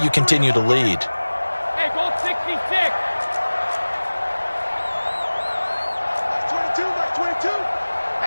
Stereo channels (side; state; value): both; inverted; correlation -1.00